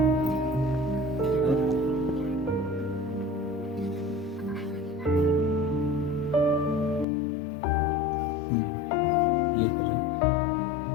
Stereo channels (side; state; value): right; drops out; at 7.1 s